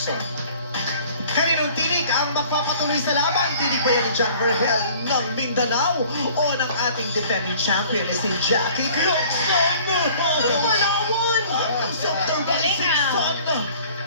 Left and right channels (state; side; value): inverted; both; correlation -0.51